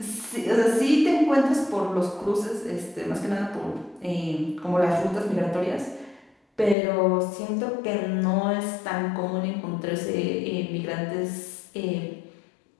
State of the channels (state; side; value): drops out; right; at 6.8 s